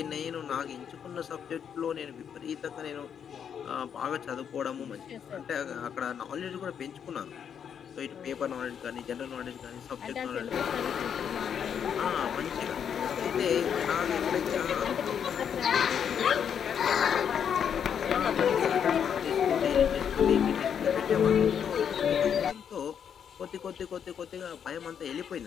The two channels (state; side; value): quieter; right; 8.0 dB